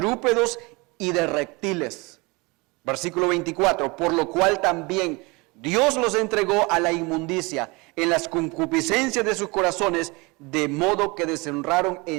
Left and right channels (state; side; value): quieter; left; 26.1 dB